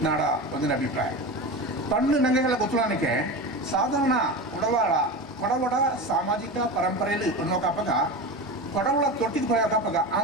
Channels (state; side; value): normal; both; correlation 0.26